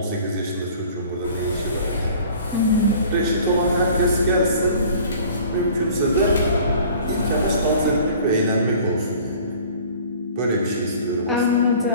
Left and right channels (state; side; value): inverted; both; correlation -0.48